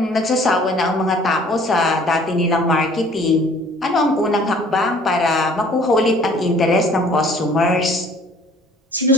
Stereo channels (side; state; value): both; normal; correlation 0.54